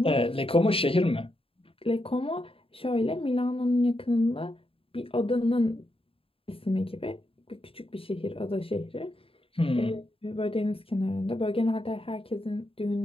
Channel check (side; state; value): right; late; 0.27 ms